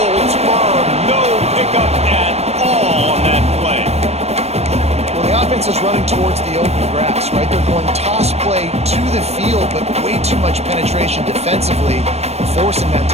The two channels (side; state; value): left; late; 0.31 ms